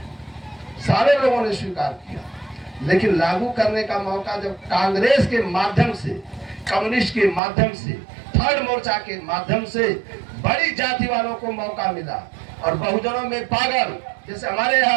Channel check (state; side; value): drops out; left; at 7.4 s